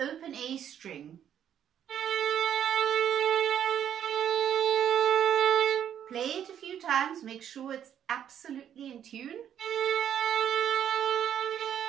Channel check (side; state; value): left; quieter; 9.6 dB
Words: A string. Play it a few times, make sure it's absolutely in tune.